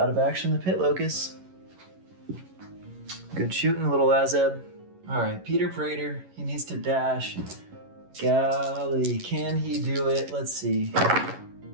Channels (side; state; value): left; late; 11 ms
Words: of action the pit locust. Good shooting, little Azeb. All right, Peter Praetor, he needs to dash. Golly, can he do it? Let's see.